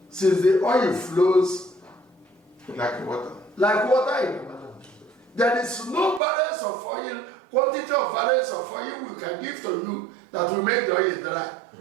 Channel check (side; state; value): left; drops out; at 6.2 s